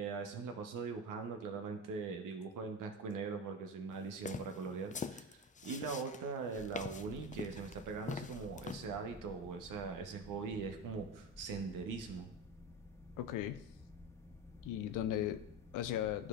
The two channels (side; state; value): both; normal; correlation 0.22